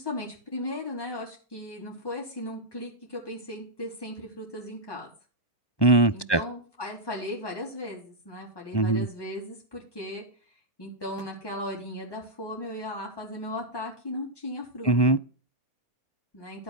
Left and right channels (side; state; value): right; late; 1.2 ms